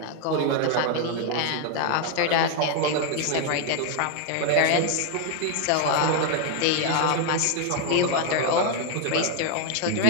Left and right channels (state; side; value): different; both; correlation 0.00